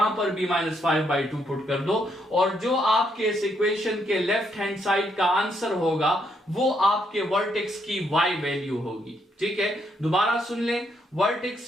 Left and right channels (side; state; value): both; normal; correlation 0.75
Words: पर भी -5/2 पुट कर दो, और जो आपके इस इक्वेशन के लेफ्ट हैंड साइड का आंसर होगा वो आपके वर्टेक्स की y वैल्यू होगी, ठीक है। दोबारा सुन लें,